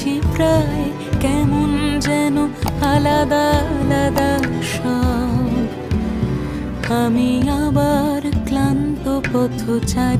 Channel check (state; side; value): identical; both; correlation 1.00